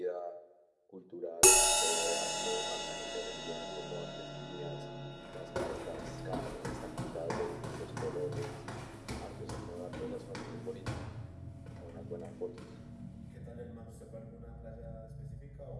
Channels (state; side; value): identical; both; correlation 1.00